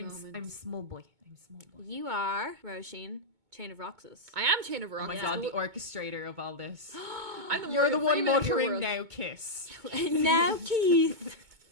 I'm small boy. I'm small boy. you are Roisin, Chain-of-Roxas. I am Chain of Oh Roxas. my God, the orchestrator of all this. I'm You're the one Freeman of your muttering world. now, kiss. Now, Keith.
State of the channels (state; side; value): late; left; 2.2 ms